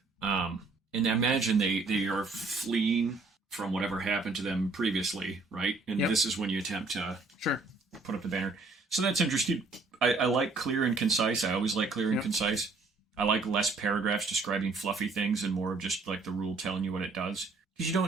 And I imagine they are fleeing from whatever happened to them previously, right? And this is when you attempt to put up the banner. So that's interesting. I like clear and concise. I always like clear and concise. I like less paragraphs describing fluffy things and more of just like the rule telling you what it does. Because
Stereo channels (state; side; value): quieter; left; 3.8 dB